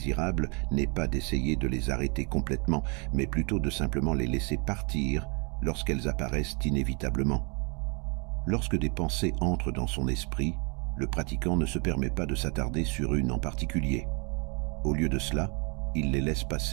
n'est pas d'essayer de les arrêter complètement, mais plutôt de simplement les laisser partir lorsqu'elles apparaissent inévitablement. Lorsque des pensées entrent dans son esprit, le pratiquant ne se permet pas de s'attarder sur une en particulier. Au lieu de cela, il les laisse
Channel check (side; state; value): left; quieter; 33.3 dB